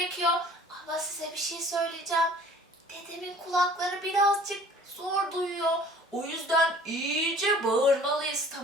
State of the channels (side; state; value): both; normal; correlation 0.50